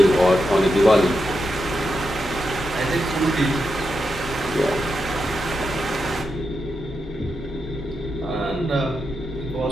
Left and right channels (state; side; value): normal; both; correlation 0.86